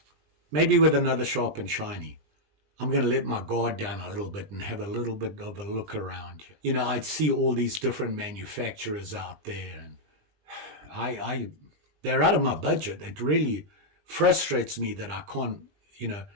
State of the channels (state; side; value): late; left; 20 ms